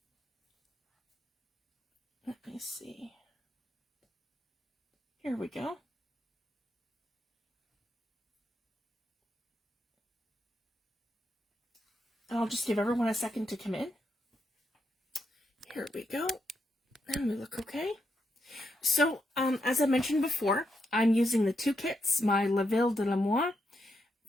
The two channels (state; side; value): normal; both; correlation 0.81